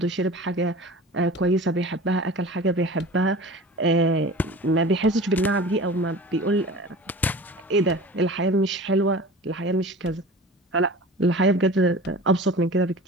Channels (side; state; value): both; normal; correlation 0.38